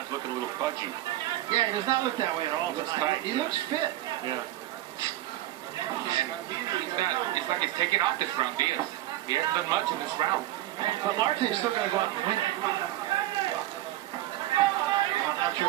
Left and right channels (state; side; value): quieter; left; 15.1 dB